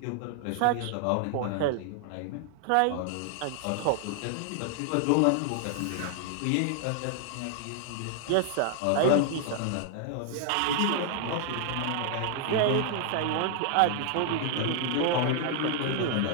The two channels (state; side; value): different; both; correlation 0.00